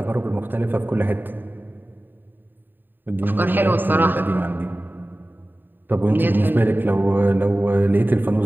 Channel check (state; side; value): late; left; 0.092 ms